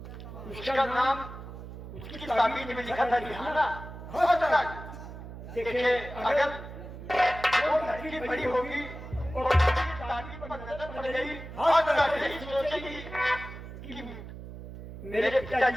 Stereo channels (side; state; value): right; noise; hum, 12 dB below the sound